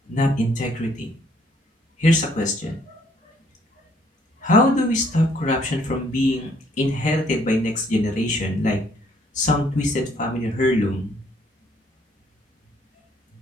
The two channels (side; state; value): both; normal; correlation 0.65